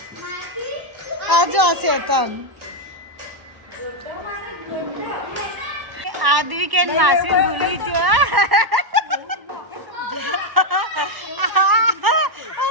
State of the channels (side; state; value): left; late; 1.0 ms